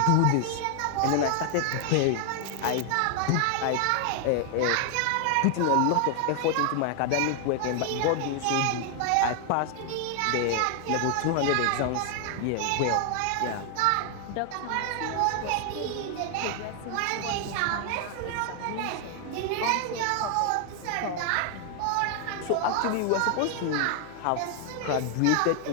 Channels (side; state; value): both; different; correlation 0.00